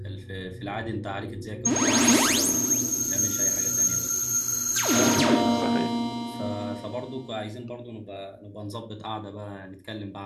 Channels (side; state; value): both; identical; correlation 1.00